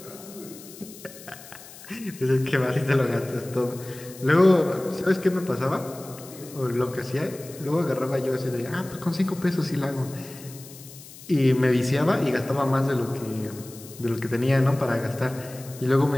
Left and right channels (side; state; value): left; noise; hiss, 18 dB below the sound